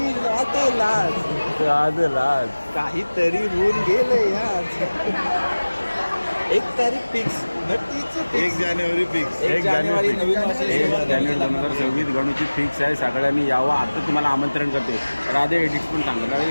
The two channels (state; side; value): inverted; both; correlation -1.00